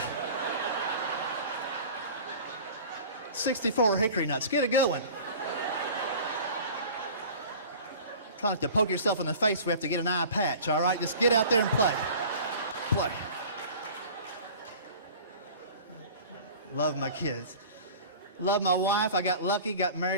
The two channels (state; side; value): inverted; both; correlation -0.41